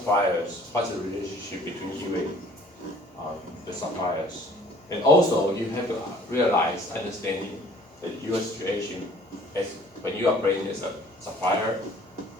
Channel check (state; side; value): normal; both; correlation 0.54